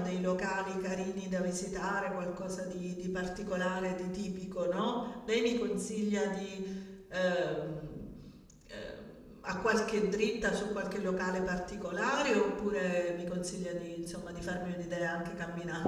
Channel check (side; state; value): both; identical; correlation 1.00